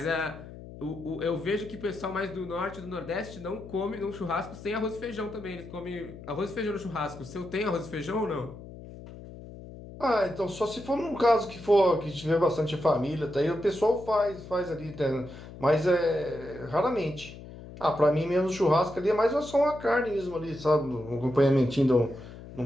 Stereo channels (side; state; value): left; noise; hum, 15 dB below the sound